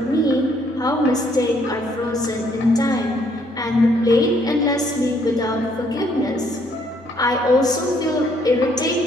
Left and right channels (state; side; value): normal; both; correlation 0.67